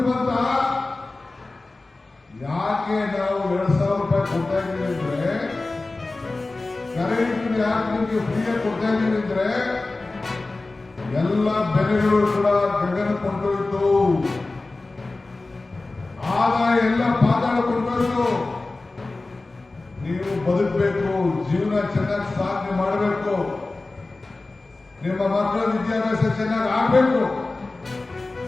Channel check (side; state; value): right; quieter; 3.3 dB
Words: ಬಂತ. ಯಾಕೆ ನಾವು 2,000 ರೂಪಾಯಿ ಕೊಡ್ತಾ ಇದ್ದೀವಿ ಅಂದ್ರೆ, ಕರೆಂಟ್ ಯಾಕೆ ನಿಮಗೆ ಫ್ರೀಯಾಗಿ ಕೊಡ್ತಾ ಇದ್ದೀವಿ ಅಂದ್ರೆ, ಎಲ್ಲ ಬೆಲೆಗಳು ಕೂಡ ಗಗನ ಕೊಂಡೋಯ್ತು, ಆದಾಯ ಎಲ್ಲ ಪಾತಾಳ ಕೊಂಡೋಯ್ತು. ನೀವು ಬದುಕಬೇಕು, ಜೀವನ ಚೆನ್ನಾಗಿ ಸಾಧನೆ ಮಾಡಬೇಕು, ನಿಮ್ಮ ಮಕ್ಕಳ ವಿದ್ಯಾಭ್ಯಾಸ ಚೆನ್ನಾಗಿ ಆಗಬೇಕು.